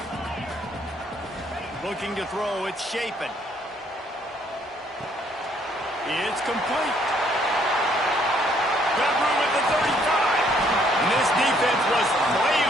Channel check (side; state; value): both; normal; correlation 0.66